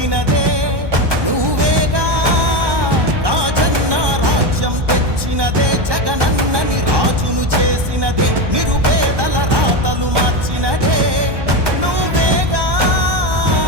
నువ్వేగా. రాజన్న రాజ్యం తెచ్చినదే, జగనన్నని రాజును చేసినదే, నిరుపేదల రాతలు మార్చినదే నువ్వేగా.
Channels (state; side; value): late; left; 1.2 ms